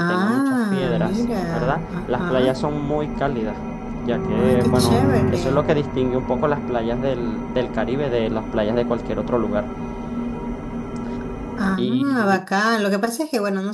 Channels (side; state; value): both; identical; correlation 1.00